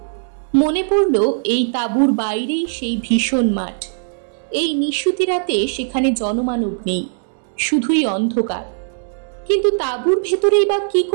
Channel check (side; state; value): left; silent; digital silence